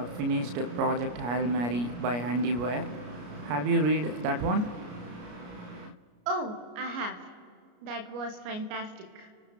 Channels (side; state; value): left; late; 33 ms